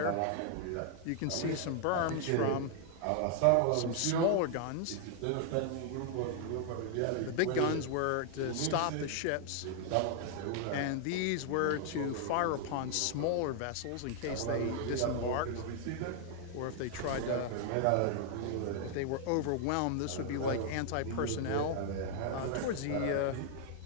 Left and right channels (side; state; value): both; different; correlation 0.00